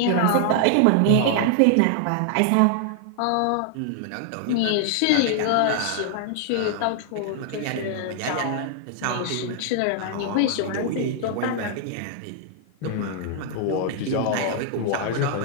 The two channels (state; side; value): different; both; correlation 0.00